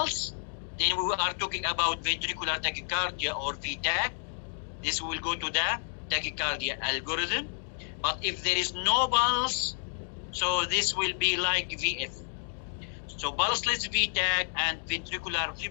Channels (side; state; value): right; silent; digital silence